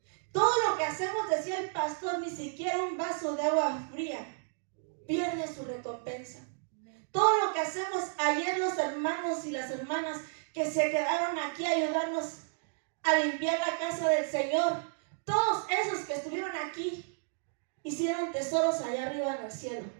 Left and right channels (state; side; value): silent; left; digital silence